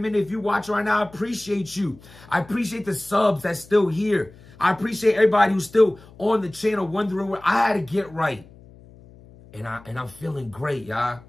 If you watch right now, I appreciate you. I appreciate the subs that's still here. I appreciate everybody who's still on the channel wondering where I had to get right. And I'm feeling great, y'all.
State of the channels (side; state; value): left; noise; hum, 23 dB below the sound